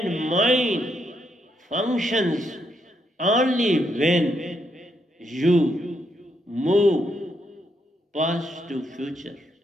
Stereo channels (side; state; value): both; normal; correlation 0.77